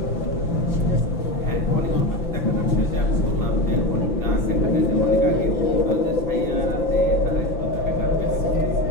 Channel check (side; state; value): right; late; 5.9 ms